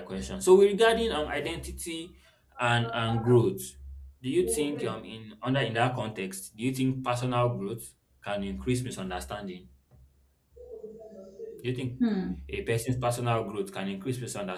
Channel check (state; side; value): identical; both; correlation 1.00